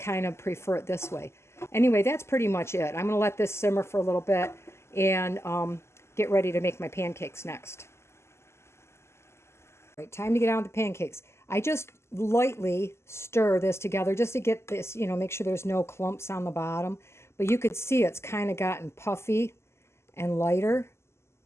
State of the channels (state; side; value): late; right; 0.13 ms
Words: of prefer it this way. Anyway, that's pretty much it. I'm going to let this simmer for a little bit and get ready to make my pancakes next. All right, time to get on with the pancakes. I just lightly stir this together just to get this, you know, make sure there's no clumps on the bottom. But you could see it's kind of gotten puffy and lighter.